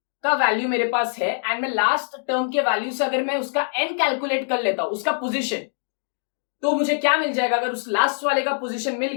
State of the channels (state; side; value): silent; right; digital silence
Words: का वैल्यू मेरे पास है एंड मैं लास्ट टर्म के वैल्यू से अगर मैं उसका n कैलकुलेट कर लेता हूं, उसका पोजीशन, तो मुझे क्या मिल जाएगा? अगर उस लास्ट वाले का पोजीशन मिल